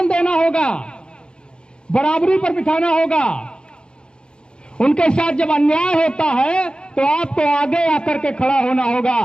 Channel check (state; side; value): late; right; 0.051 ms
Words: देना होगा, बराबरी पर बिठाना होगा। उनके साथ जब अन्याय होता है तो आपको आगे आकर के खड़ा होना